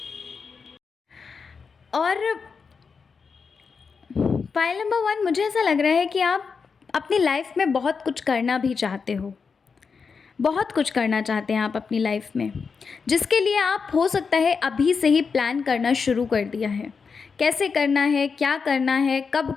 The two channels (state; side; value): quieter; right; 5.4 dB